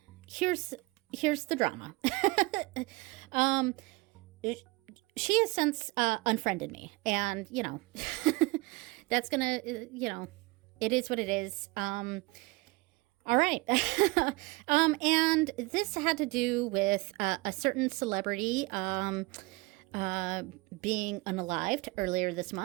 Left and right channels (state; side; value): quieter; left; 23.2 dB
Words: here's the drama. She has since unfriended me, and you know, that's gonna, you know, it is what it is. All right. And this had to do with a certain celebrity being unalived earlier this